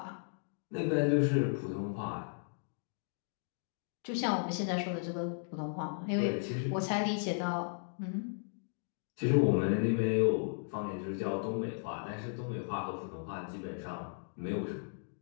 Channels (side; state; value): right; silent; digital silence